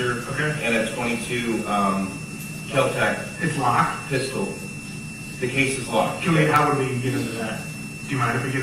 Okay. and a 22 Kel-Tec It's locked. pistol. The case is locked. How would we get into that? Do you mind if we get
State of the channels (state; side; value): identical; both; correlation 1.00